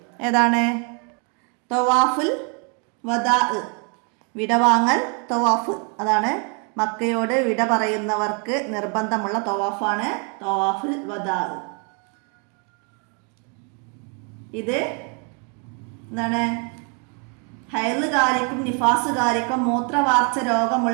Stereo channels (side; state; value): left; quieter; 37.1 dB